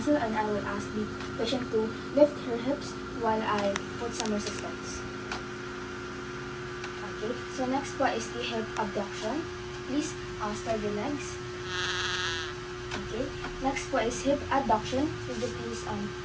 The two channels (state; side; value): identical; both; correlation 1.00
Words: and I will ask the patient to lift her hips while I put some resistance. Okay, so next po is the hip abduction. Please spread your legs. Okay, next po is hip adduction. Would you please